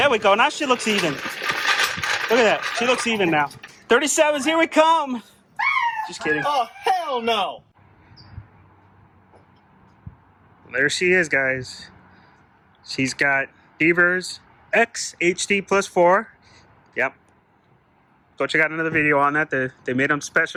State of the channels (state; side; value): identical; both; correlation 1.00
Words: There we go. Now she looks even. Look at that. She looks even now. 37s, here we come. Just kidding. Oh, hell no. There she is, guys. She's got Beaver's X HD plus 4. Yep. Go check out another video on that. They made them